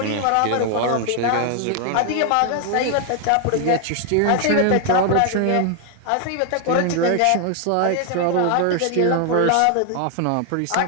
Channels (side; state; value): both; different; correlation 0.00